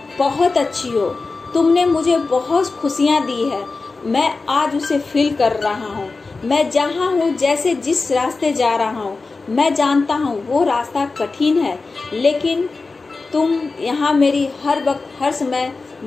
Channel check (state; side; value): quieter; right; 3.9 dB